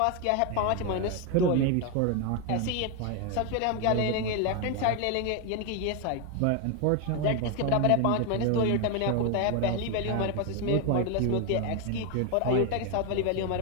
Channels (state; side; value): different; both; correlation 0.01